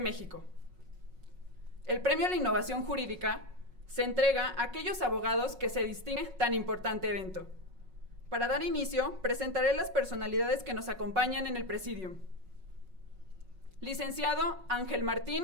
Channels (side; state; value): left; late; 5.4 ms